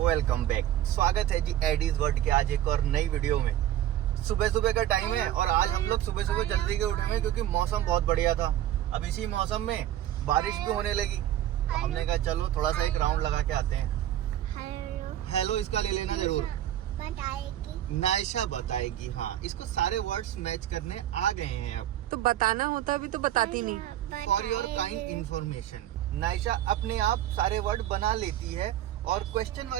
Welcome back. स्वागत है जी Aedes world के आज एक और नई वीडियो में। सुबह सुबह का टाइम है और आज हम लोग सुबह सुबह जल्दी के उठे हैं क्योंकि मौसम बहुत बढ़िया था। अब इसी मौसम में बारिश भी होने लगी। हमने कहा चलो थोड़ा सा एक राउंड लगा के आते हैं। हेलो इसका ले लेना जरूर। नायशा बताएगी। हाँ, इसको सारे वर्ड्स मैच करने आ गए हैं। अब तो बताना होता अभी तो बताती नहीं। For your kind information, Naisha अपने आप सारे वर्ड बना लेती है और क्वेश्चन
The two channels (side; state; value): left; quieter; 12.4 dB